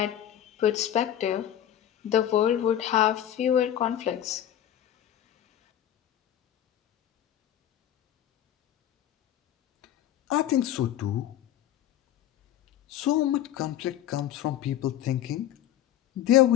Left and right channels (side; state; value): right; quieter; 11.4 dB